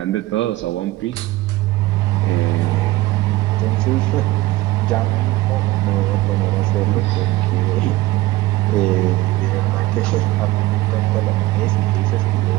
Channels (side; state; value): left; quieter; 18.0 dB